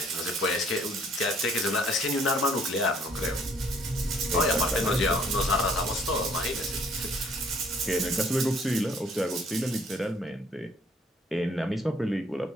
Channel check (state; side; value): normal; both; correlation 0.61